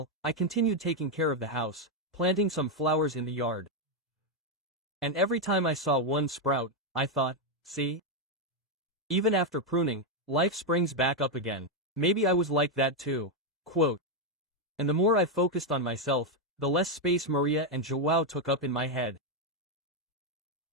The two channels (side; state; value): both; normal; correlation 0.03